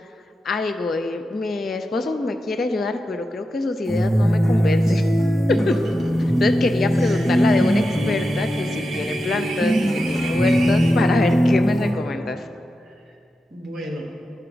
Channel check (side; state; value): both; normal; correlation 0.90